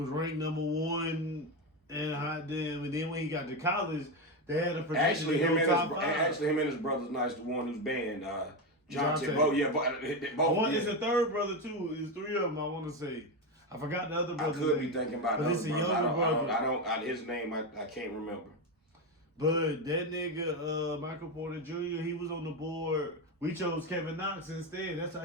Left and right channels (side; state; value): both; normal; correlation 0.12